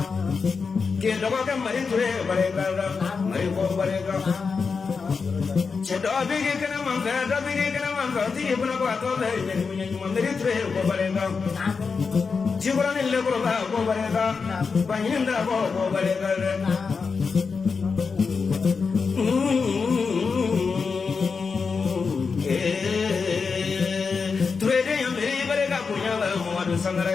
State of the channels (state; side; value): quieter; right; 5.1 dB